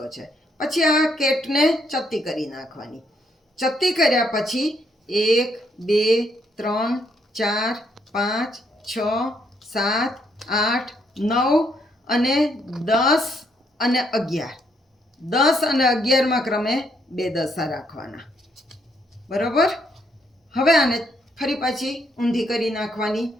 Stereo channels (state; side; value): normal; both; correlation 0.73